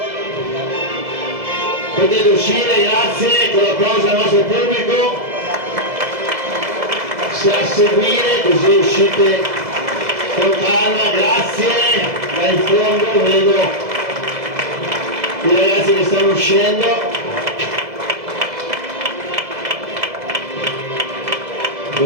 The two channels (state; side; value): late; left; 2.0 ms